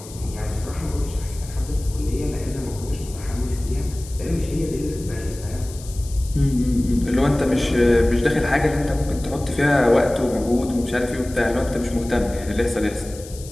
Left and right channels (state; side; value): noise; left; hiss, 17 dB below the sound